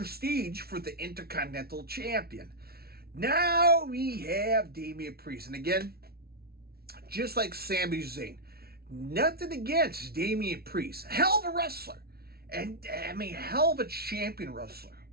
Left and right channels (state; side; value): late; left; 0.45 ms